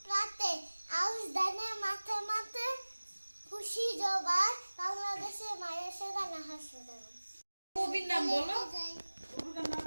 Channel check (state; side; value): inverted; both; correlation -1.00